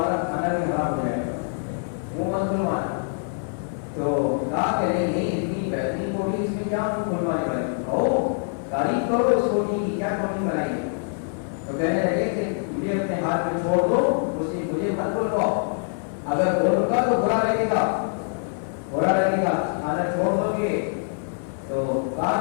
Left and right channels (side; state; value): right; silent; digital silence